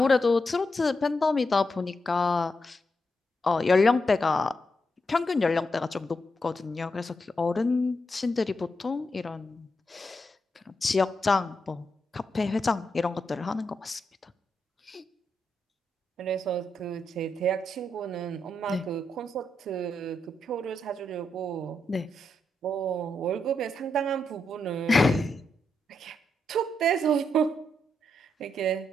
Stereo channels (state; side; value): normal; both; correlation 0.83